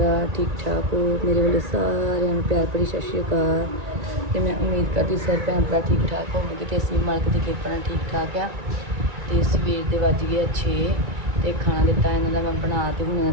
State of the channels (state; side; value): late; left; 2.3 ms